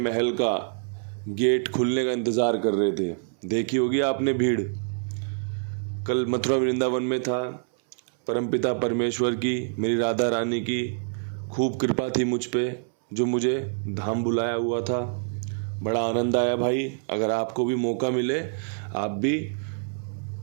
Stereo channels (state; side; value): silent; left; 61 dB below the other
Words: का गेट खुलने का इंतज़ार कर रहे थे। देखी होगी आपने भीड़। कल मथुरा वृंदावन में था। परमपिता परमेश्वर की, मेरी राधा रानी की खूब कृपा थी मुझ पे, जो मुझे धाम बुलाया हुआ था। बड़ा आनंद आया भाई। अगर आपको भी मौका मिले आप भी